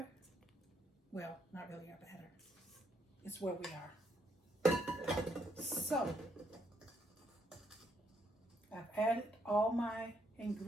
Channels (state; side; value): normal; both; correlation 0.73